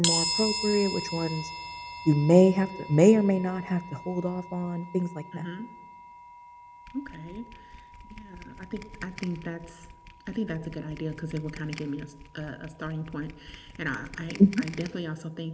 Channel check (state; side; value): identical; both; correlation 1.00